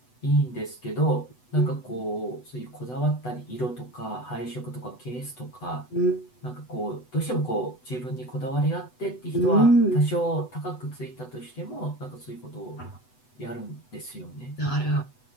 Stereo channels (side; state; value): right; late; 8.0 ms